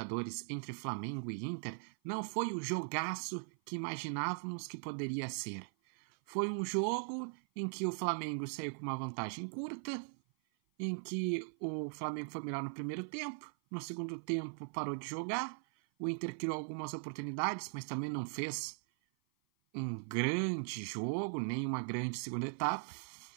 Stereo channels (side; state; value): left; silent; 51 dB below the other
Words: entre Flamengo e Inter não foi o jogaço que imaginávamos que poderia ser. Foi um jogo em que o Flamengo saiu com uma vantagem curta, em que o Flamengo foi melhor no primeiro tempo, no segundo tempo parou de jogar, o Inter criou algumas oportunidades, mas também não fez um grande jogo, nem uma grande segunda etapa.